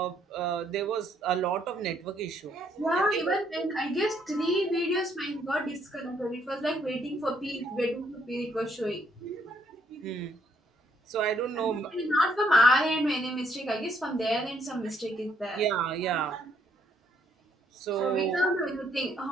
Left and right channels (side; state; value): both; normal; correlation 0.70